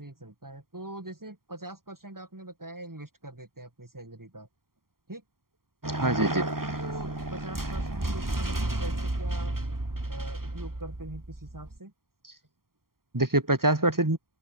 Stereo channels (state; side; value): late; left; 0.93 ms